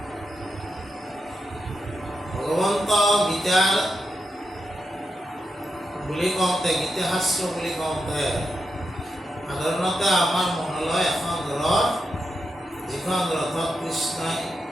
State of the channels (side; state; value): both; normal; correlation 0.86